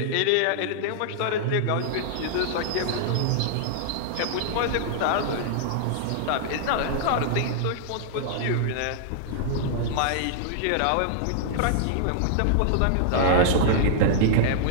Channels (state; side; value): different; both; correlation -0.01